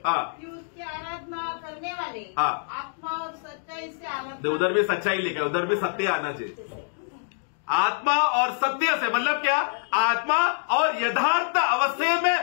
उसकी आराधना करने वाले आत्मा और सच्चाई से आराधना. उधर भी सच्चाई लिखा है, उधर भी सत्य आना चाहिए. आत्मा और सत्य से मतलब क्या? आत्मा और यथार्थ अवस्थे में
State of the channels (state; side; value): silent; right; digital silence